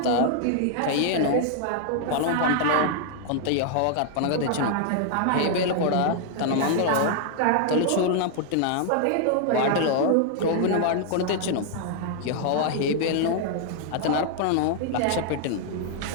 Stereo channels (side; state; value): both; different; correlation -0.01